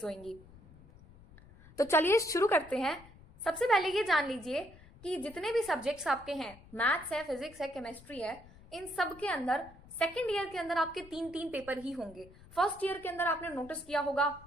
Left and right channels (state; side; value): noise; left; rumble, 22 dB below the sound